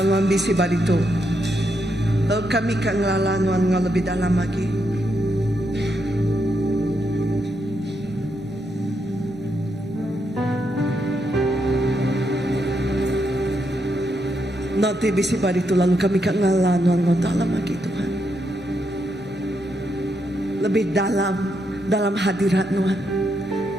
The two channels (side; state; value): both; normal; correlation 0.80